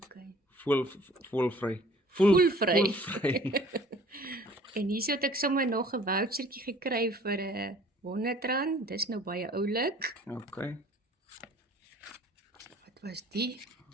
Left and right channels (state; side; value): normal; both; correlation 0.52